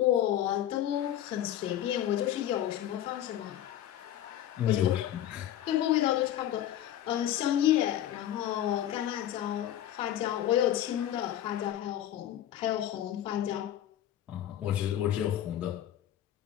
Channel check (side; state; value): right; quieter; 11.8 dB